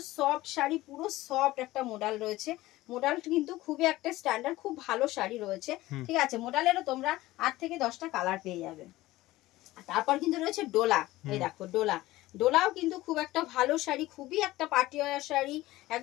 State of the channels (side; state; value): right; quieter; 17.5 dB